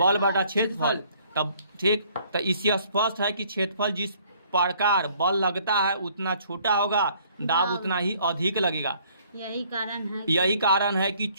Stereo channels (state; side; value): inverted; both; correlation -0.60